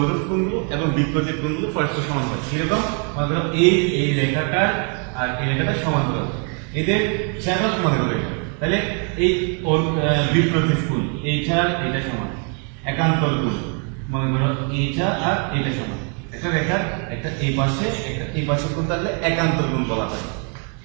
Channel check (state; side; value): quieter; left; 39.7 dB